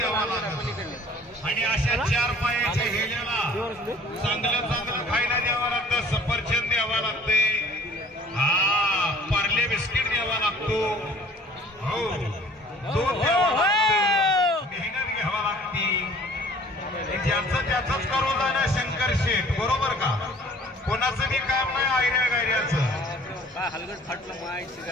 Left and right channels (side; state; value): both; normal; correlation 0.51